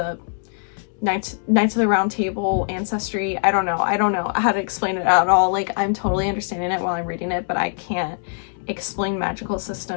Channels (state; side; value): silent; right; digital silence